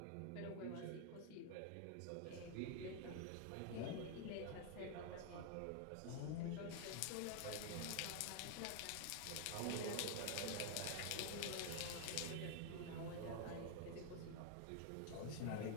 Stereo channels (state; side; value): different; both; correlation 0.00